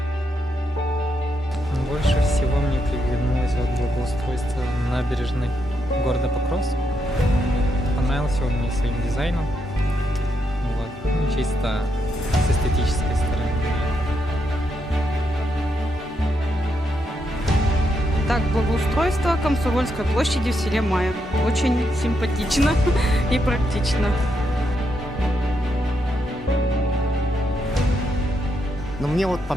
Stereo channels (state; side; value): normal; both; correlation 0.80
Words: Больше всего мне приглянулось вот благоустройство набережной города Покровск. Понравился он мне своим дизайном. Вот. Ну, чисто с эстетической стороны. Так, благоустройство Комсомольской площади в селе Мая. Очень симпатично и практично. Но мне вот